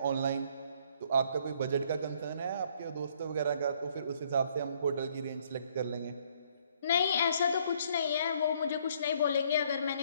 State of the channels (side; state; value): both; inverted; correlation -0.64